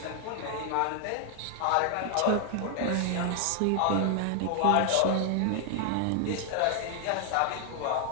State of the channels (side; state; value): both; different; correlation 0.00